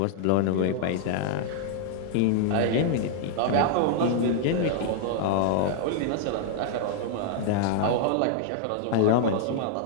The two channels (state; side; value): different; both; correlation -0.01